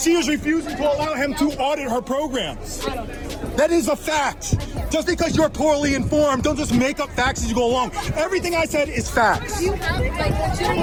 was refusing to allow him to audit her programs. That is a fact. Just because you're poorly informed, don't just make up facts as you go along. Everything I said is facts. You have like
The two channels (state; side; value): identical; both; correlation 1.00